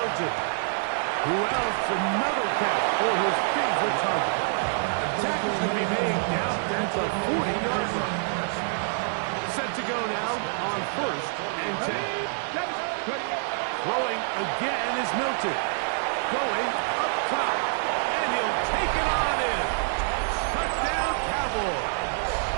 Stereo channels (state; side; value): silent; left; 60 dB below the other